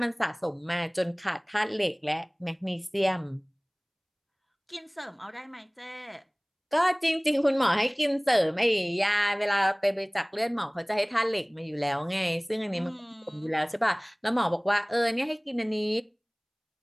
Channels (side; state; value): both; identical; correlation 1.00